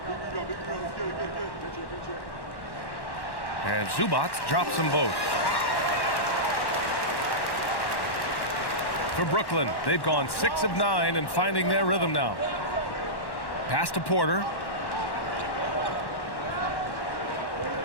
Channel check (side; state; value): right; late; 1.1 ms